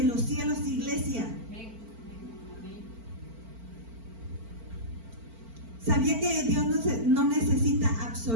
los cielos, iglesia. ¿Sabía que Dios no necesita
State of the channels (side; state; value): left; late; 4.4 ms